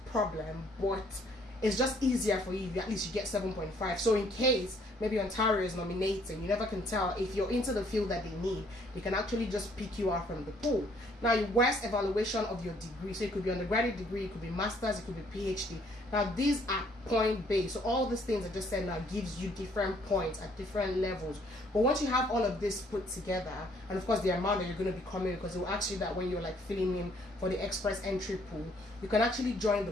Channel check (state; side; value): normal; both; correlation 0.64